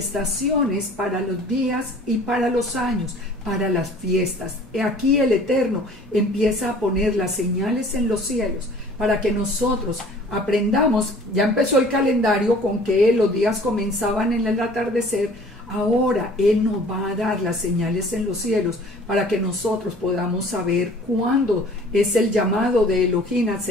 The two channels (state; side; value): normal; both; correlation 0.50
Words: para los días y para los años, para las fiestas. Aquí el Eterno empieza a poner las señales en los cielos para que nosotros aprendamos. Ya empezó el calendario con que los días comenzaban en el atardecer. Ahora Él nos va a dar las señales en los cielos para que nosotros podamos saber cuándo es el llamado de Elohim a